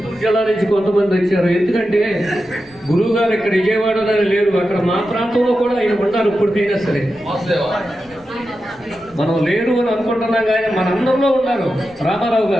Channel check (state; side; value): noise; left; rumble, 27 dB below the sound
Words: జిల్లా నుంచి కొంతమంది వచ్చారు. ఎందుకంటే గురువు గారు ఇక్కడ విజయవాడలో లేరు, అక్కడ మా ప్రాంతంలో కూడా ఆయన ఉన్నారు. ఇప్పటికైనా సరే మనం లేరు అని అనుకుంటున్నాం, కానీ మనందరిలో ఉన్నారు. రామారావు